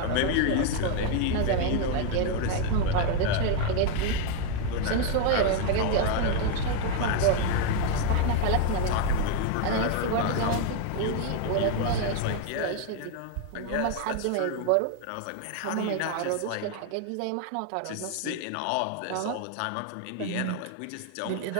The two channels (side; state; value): both; different; correlation 0.01